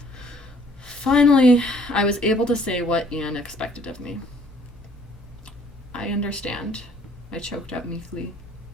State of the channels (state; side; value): noise; left; hum, 26 dB below the sound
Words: Finally, I was able to say what Ian expected of me. I understand, I choked out meekly,